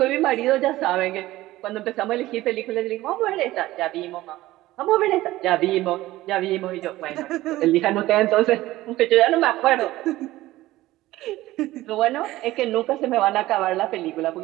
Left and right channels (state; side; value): quieter; left; 16.8 dB